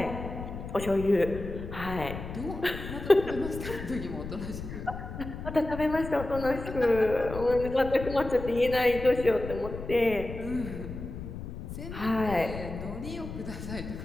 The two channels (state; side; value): noise; left; rumble, 9 dB below the sound